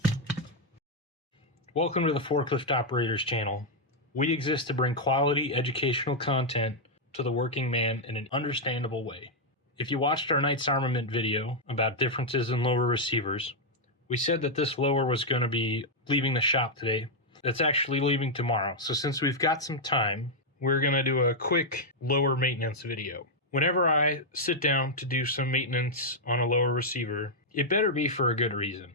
Welcome to the Forklift Operators channel. We exist to bring quality educational content to the working man in an understandable way. If you watched our Knights Armament video about differences in lower receivers, we said that this lower was going to be leaving the shop today. It's actually leaving tomorrow. So since we've got some time, we're going to do a quick lower maintenance video. Whenever I sit down to do some maintenance on a lower receiver, it better be for a good reason.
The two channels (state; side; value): normal; both; correlation -0.03